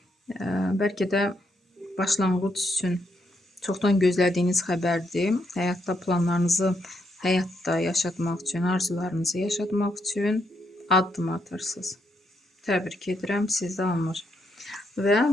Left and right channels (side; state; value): both; normal; correlation 0.77